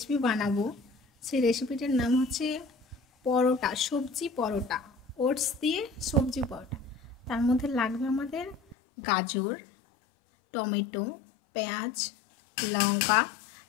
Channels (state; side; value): drops out; right; at 8.8 s